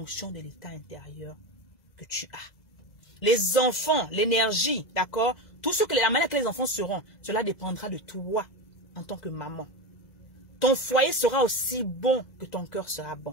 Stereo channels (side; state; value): right; late; 2.0 ms